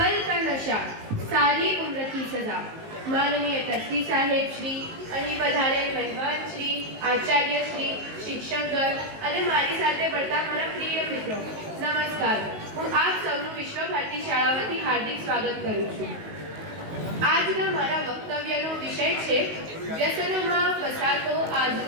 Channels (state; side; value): late; left; 19 ms